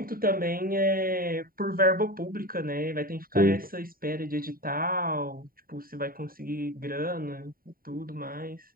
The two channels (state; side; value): late; left; 0.42 ms